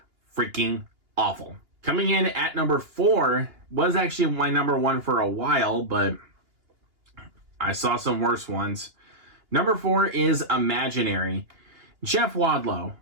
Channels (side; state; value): left; late; 2.8 ms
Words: freaking awful. Coming in at number 4 was actually my number 1 for a while, but I saw some worse ones. Number 4 is Imaginary. Jeff Wadlow,